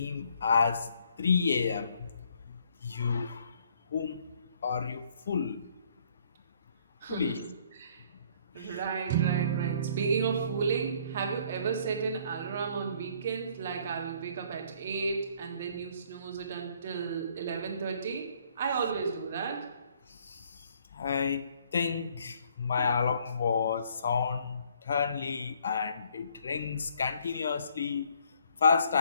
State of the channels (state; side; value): inverted; both; correlation -0.63